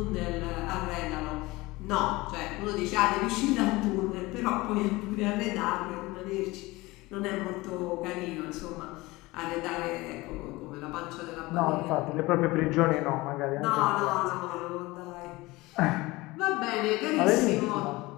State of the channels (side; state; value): right; quieter; 21.2 dB